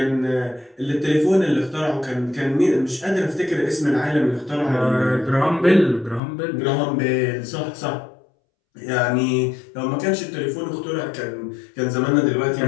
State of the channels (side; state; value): right; drops out; at 6.2 s